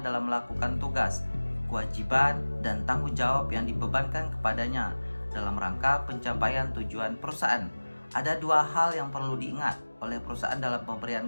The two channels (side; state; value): both; inverted; correlation -1.00